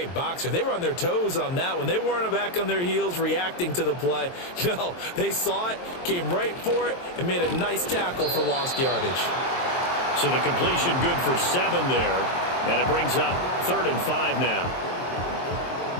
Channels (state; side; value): late; right; 23 ms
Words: boxer. They were on their toes on that one. They weren't back on their heels reacting to the play. No, they saw it, came right for it, and made a nice tackle for lost yardage. So the completion good for 7 there. And it brings up 3rd and 5 now.